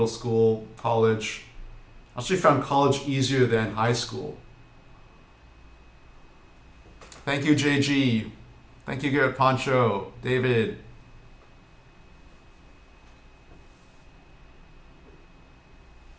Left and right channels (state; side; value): identical; both; correlation 1.00